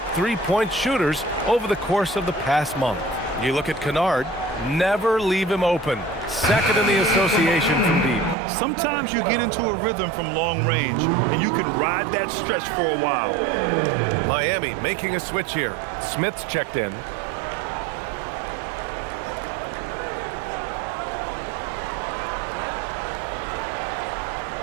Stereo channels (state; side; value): drops out; left; at 8.3 s